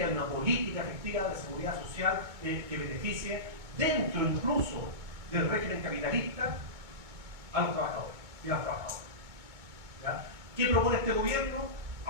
de una política efectiva de seguridad social que beneficie dentro incluso del régimen capitalista a los trabajadores y a las trabajadoras. ¿Qué propone este gobierno?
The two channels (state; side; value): late; left; 2.2 ms